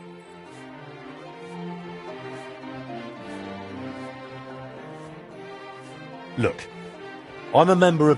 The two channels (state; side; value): identical; both; correlation 1.00